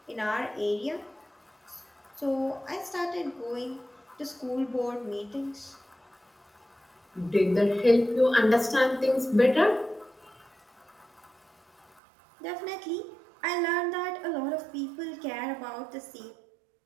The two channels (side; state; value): left; drops out; at 12.0 s